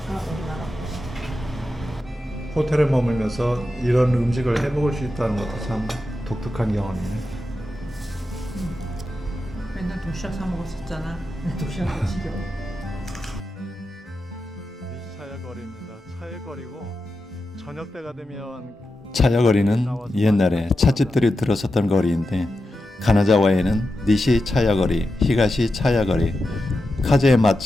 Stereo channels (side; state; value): both; normal; correlation 0.90